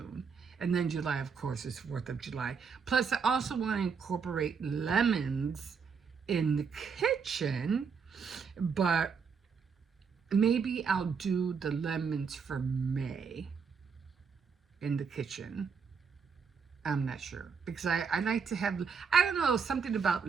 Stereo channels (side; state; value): left; quieter; 5.9 dB